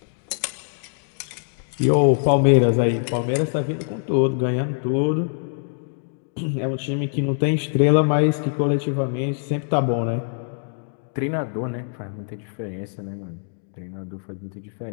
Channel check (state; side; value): silent; right; digital silence